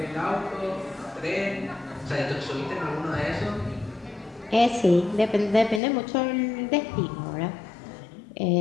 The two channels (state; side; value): drops out; right; at 5.8 s